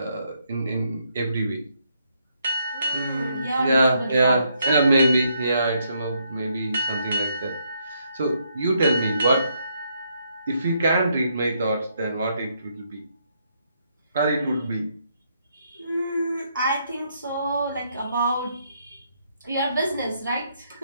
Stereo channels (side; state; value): both; inverted; correlation -0.75